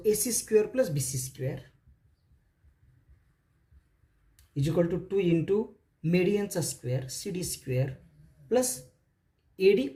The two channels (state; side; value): identical; both; correlation 1.00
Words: AC square plus BC square is equal to 2 into medianचा square CD square plus AD